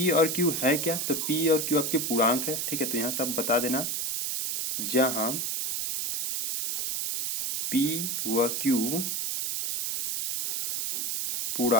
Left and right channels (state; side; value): noise; right; hiss, 1 dB below the sound